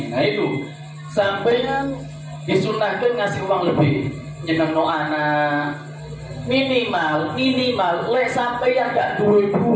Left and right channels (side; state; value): both; identical; correlation 1.00